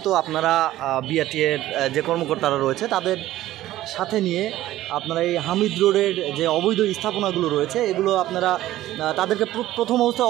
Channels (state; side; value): quieter; left; 14.7 dB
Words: তো আপনারা বিআরটিএর যে কর্মকর্তারা রয়েছে তাদের সাথে নিয়ে আপনারা এই হামিদ রোডের যে অবৈধ স্থাপনাগুলো রয়েছে এগুলো আপনারা তাদেরকে প্রথম